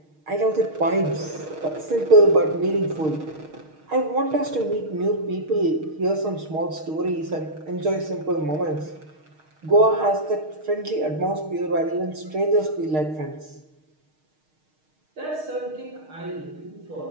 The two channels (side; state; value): left; late; 6.4 ms